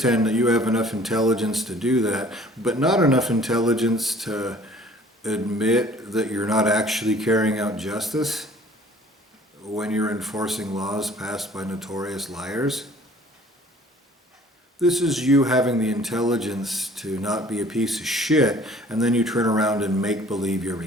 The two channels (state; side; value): normal; both; correlation 0.53